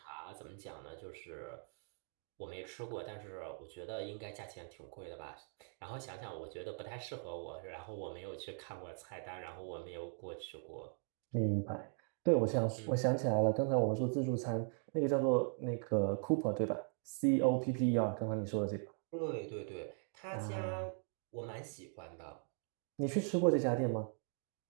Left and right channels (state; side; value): silent; left; 51 dB below the other